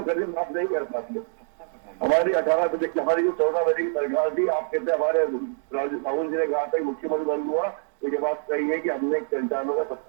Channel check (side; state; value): left; silent; digital silence